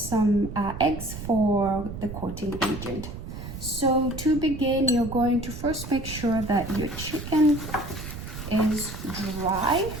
eggs for the coating agent. So to begin, you're going to first make sure that your chicken is dry.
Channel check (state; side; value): noise; right; rumble, 9 dB below the sound